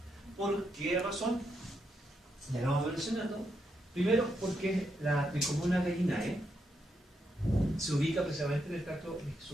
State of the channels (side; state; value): both; normal; correlation 0.81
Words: ¿Por qué razón? Ya lo vamos mencionando. Primero, porque la Tricomona gallinae se ubica precisamente en el tracto